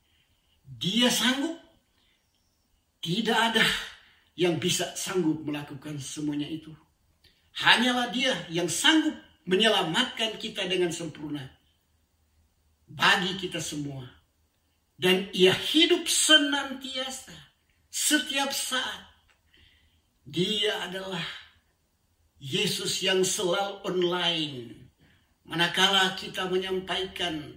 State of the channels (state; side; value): identical; both; correlation 1.00